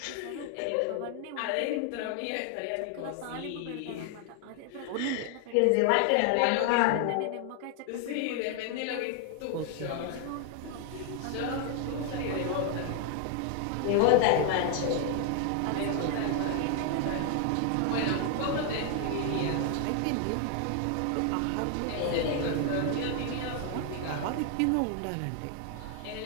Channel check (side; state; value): both; different; correlation 0.00